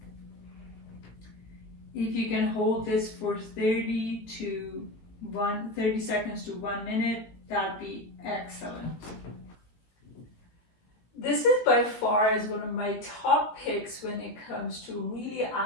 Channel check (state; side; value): late; right; 17 ms